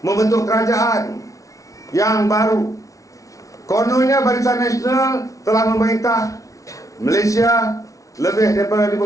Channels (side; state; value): right; late; 0.16 ms